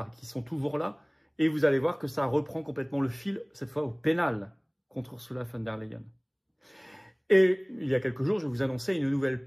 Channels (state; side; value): identical; both; correlation 1.00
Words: qui sont toujours là. Et vous allez voir que ça reprend complètement le fil, cette fois au pénal, contre Ursula von der Leyen. Et il y a quelques jours, je vous annonçais une nouvelle